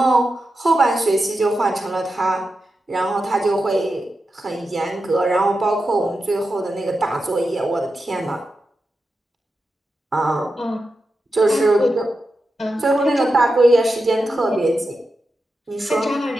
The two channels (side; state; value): both; normal; correlation 0.90